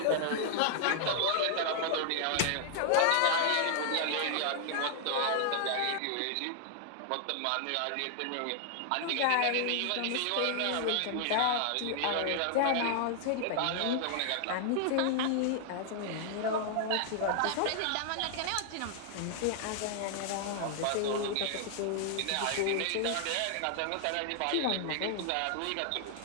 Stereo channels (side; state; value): both; different; correlation 0.00